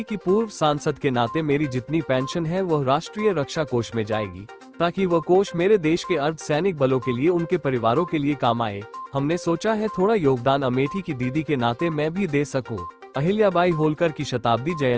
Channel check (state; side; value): identical; both; correlation 1.00